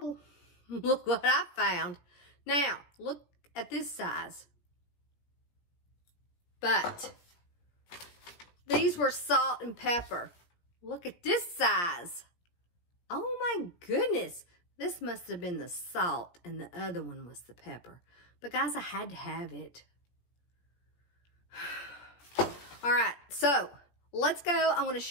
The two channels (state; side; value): late; right; 17 ms